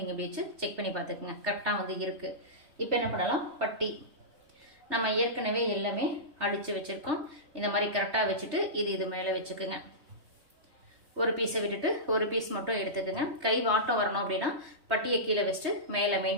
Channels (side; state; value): left; late; 3.3 ms